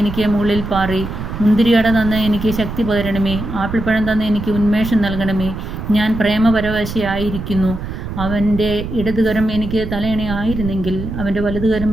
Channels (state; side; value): noise; right; rumble, 7 dB below the sound